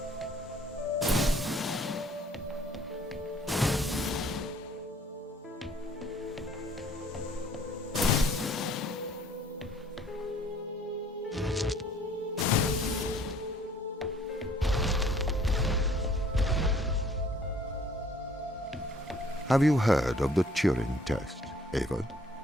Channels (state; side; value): normal; both; correlation 0.58